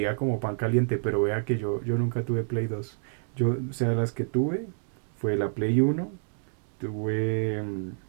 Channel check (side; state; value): left; silent; 59 dB below the other